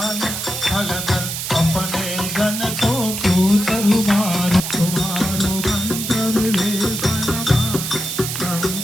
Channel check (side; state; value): right; noise; hiss, 4 dB below the sound